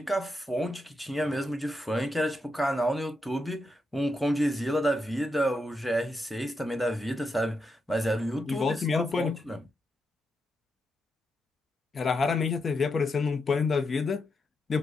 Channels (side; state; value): both; normal; correlation 0.84